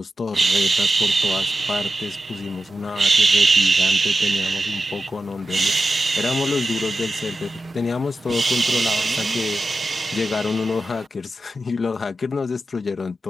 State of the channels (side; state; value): both; normal; correlation 0.91